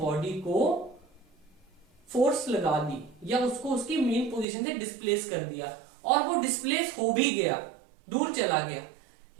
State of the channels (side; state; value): left; drops out; at 4.5 s